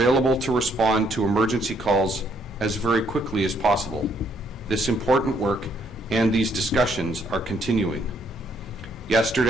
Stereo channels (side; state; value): both; normal; correlation 0.70